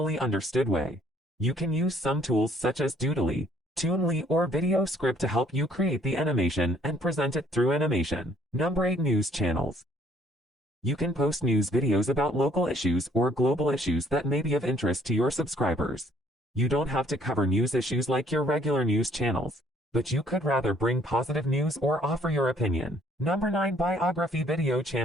understood way. You can use some tools such as Doodly, Toonly, or Video Script to help you create the animation and present it through animation. Number 8, News channels. You can post news videos about local issues or global issues that may be of interest to your subscribers. You don't have to cover news issues like your regular news channels, but you could rather bring positive news or offer your opinion. Number 9, Biography video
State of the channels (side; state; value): both; normal; correlation 0.61